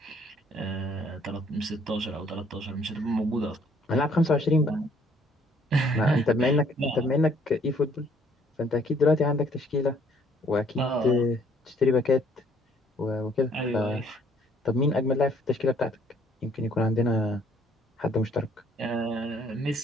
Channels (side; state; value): both; normal; correlation 0.62